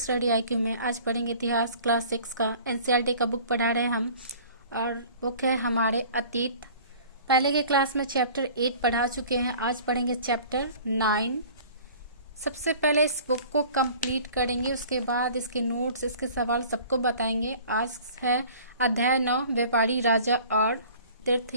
आईक्यू में। आज पढ़ेंगे इतिहास क्लास 6 का। एनसीईआरटी का बुक पढ़ा रहे हैं हम और बुक है हमारे अतीत। पहले के क्लास में चैप्टर 8 पढ़ा चुके हैं, आज पढ़ेंगे चैप्टर 9। सबसे पहले इस बुक को कंप्लीट करेंगे, उसके बाद इसके नोट्स, इसके सवाल सबको बताएंगे। आज है अध्याय 9, व्यापारी, राजा और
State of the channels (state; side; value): inverted; both; correlation -0.47